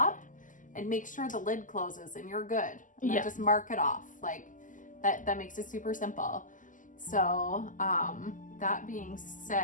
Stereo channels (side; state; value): right; late; 0.38 ms